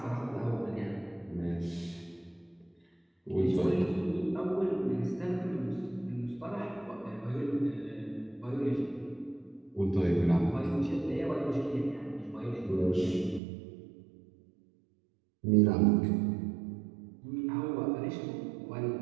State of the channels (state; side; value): drops out; left; at 13.4 s